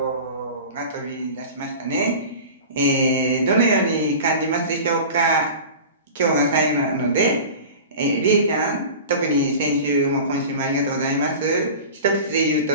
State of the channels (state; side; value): inverted; both; correlation -0.35